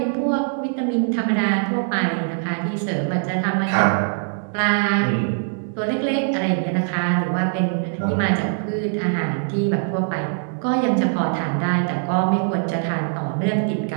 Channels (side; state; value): left; silent; 64 dB below the other